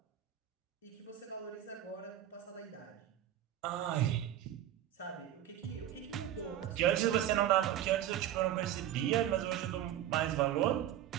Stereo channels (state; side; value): quieter; left; 11.6 dB